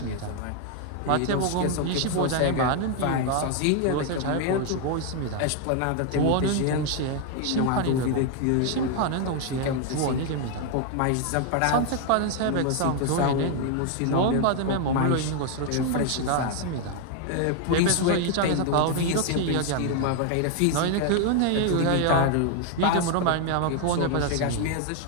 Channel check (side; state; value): both; different; correlation 0.00